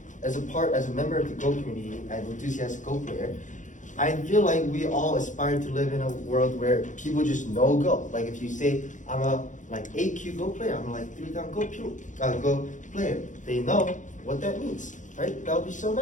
member of the Go community and enthusiastic Go player, I feel like we all aspire to live in a world where people just know Go. Like if you say, I'm a like 8Q Go player, I'm a like 3-down Go player, they know what that means, right? That would be so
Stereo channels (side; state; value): right; late; 0.36 ms